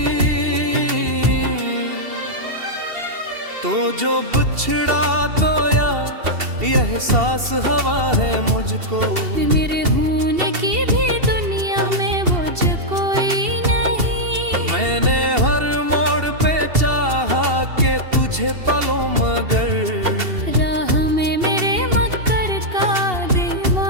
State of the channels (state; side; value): late; left; 2.7 ms